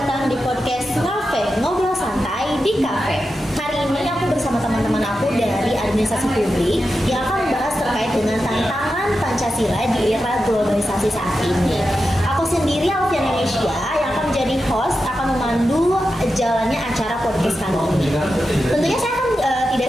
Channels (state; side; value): normal; both; correlation 0.90